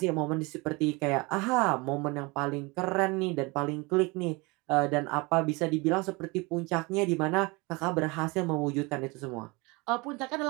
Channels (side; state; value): left; quieter; 26.0 dB